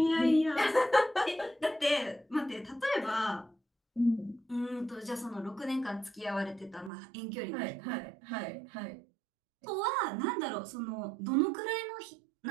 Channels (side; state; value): left; drops out; at 6.9 s